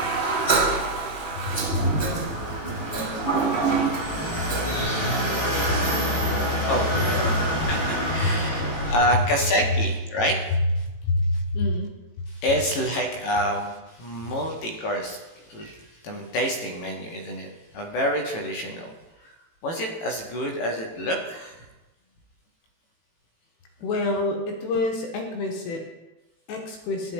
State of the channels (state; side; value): late; right; 18 ms